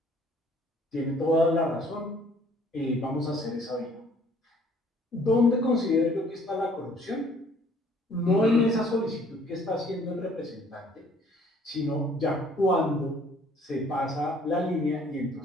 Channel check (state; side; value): normal; both; correlation 0.59